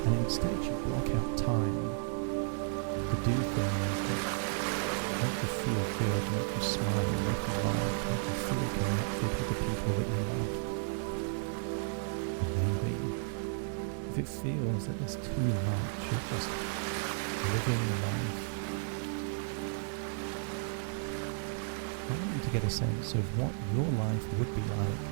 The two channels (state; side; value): silent; left; digital silence